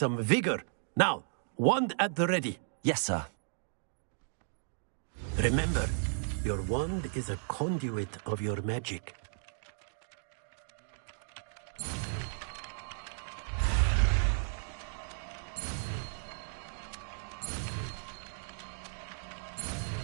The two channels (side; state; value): left; silent; digital silence